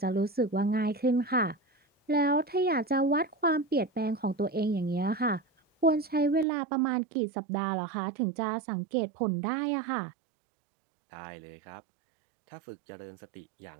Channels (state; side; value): drops out; left; at 6.5 s